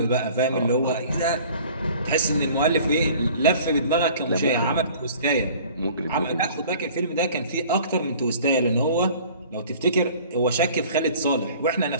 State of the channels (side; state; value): both; inverted; correlation -0.48